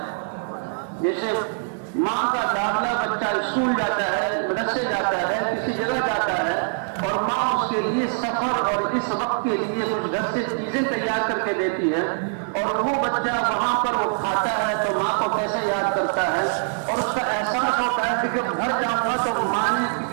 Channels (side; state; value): left; silent; digital silence